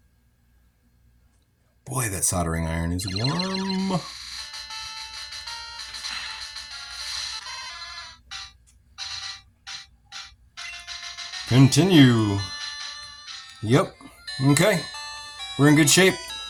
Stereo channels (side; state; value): both; identical; correlation 1.00